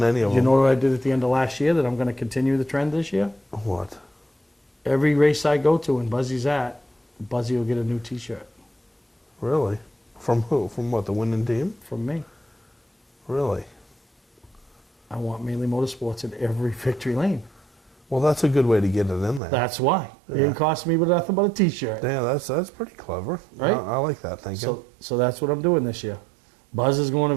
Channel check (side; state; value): left; drops out; at 19.4 s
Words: any of them. You know what I did at the end of last year that I'm going to continue the trend this year? What? Every race I go to and Buzzy's at, Buzzy will get a new T-shirt. Really? From who? From what, the winning team? From me. Really? I want Mainely Motorsports in every victory lane. Well, that's a good way to get it in there. That's why. It didn't cost me but nothing but a T-shirt. Yeah, that's pretty clever. Right? I like that thinking. So that's what I'm doing this year. Buzz is going to